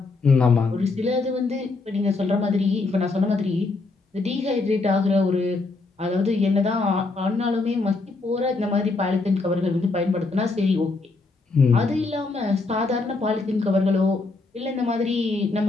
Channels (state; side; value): quieter; right; 3.6 dB